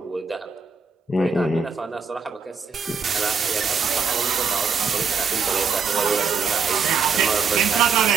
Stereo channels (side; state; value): left; quieter; 5.5 dB